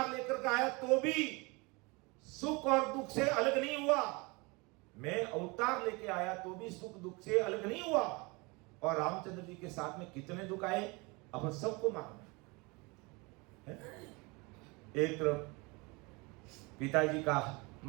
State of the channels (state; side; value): quieter; left; 26.9 dB